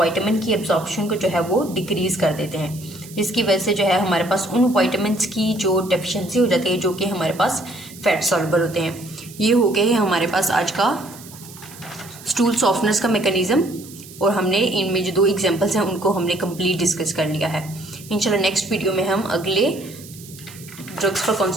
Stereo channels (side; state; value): right; noise; hiss, 18 dB below the sound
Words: की एब्जॉर्प्शन को जो है वो डिक्रीज कर देते हैं, जिसकी वजह से जो है हमारे पास उन विटामिन्स की जो डेफिशिएंसी हो जाती है जो कि हमारे पास फैट सॉल्युबल होते हैं। ये हो गए हैं हमारे पास आज का स्टूल सॉफ्टनेस का मैकेनिज्म, और हमने इनमें जो 2 एग्जांपल्स हैं उनको हमने कंप्लीट डिस्कस कर लिया है। इंशाल्लाह नेक्स्ट वीडियो में हम अगले ड्रग्स फॉर